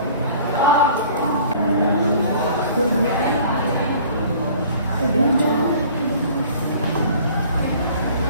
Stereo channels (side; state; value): both; inverted; correlation -0.50